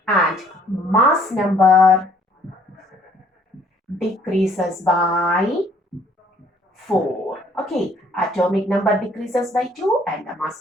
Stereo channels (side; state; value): both; normal; correlation 0.61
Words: and mass number decreases by 4. Okay, atomic number decreases by 2 and the